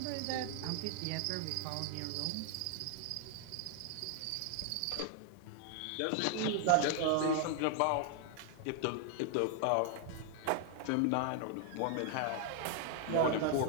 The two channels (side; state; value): both; different; correlation 0.00